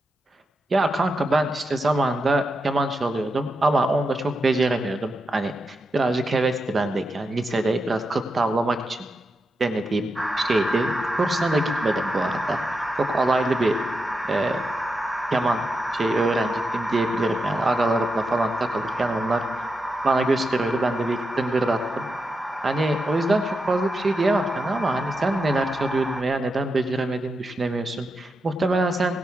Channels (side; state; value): both; normal; correlation 0.87